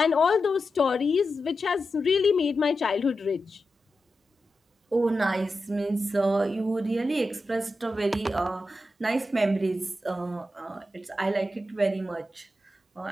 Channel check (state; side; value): normal; both; correlation 0.90